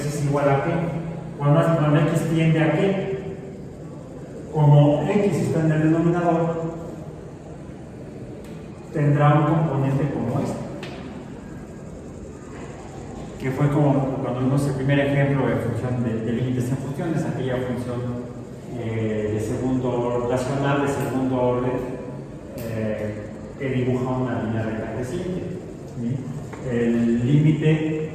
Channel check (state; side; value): identical; both; correlation 1.00